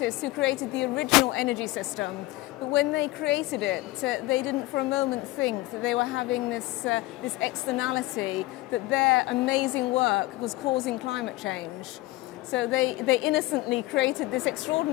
who created the original energy system. But when they created it, they didn't for a moment think that they were having this externality, that their amazing work was causing climate change. So they innocently created this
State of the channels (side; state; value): right; quieter; 19.3 dB